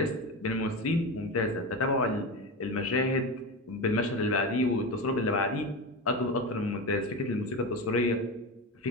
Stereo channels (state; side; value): normal; both; correlation 0.22